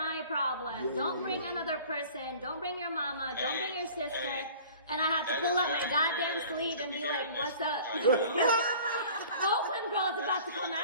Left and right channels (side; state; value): both; inverted; correlation -0.45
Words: problem. Yeah, Don't yeah, bring yeah. another person. Don't bring your mama. Don't bring your sister. Hey. And I have to That pull is up my very goddamn rare sleeve to and be be like, hearing "What's this. up?" Oakland girl's about to come